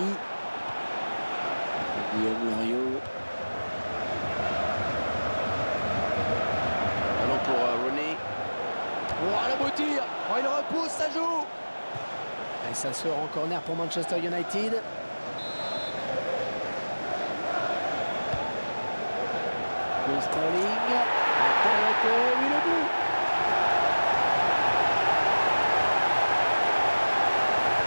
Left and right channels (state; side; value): inverted; both; correlation -1.00